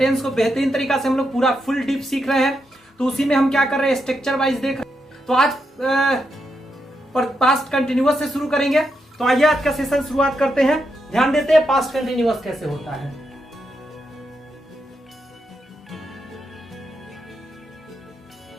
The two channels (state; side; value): normal; both; correlation 0.83